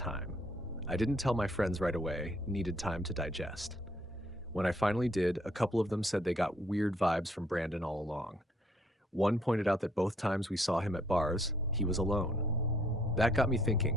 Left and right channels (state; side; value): normal; both; correlation 0.66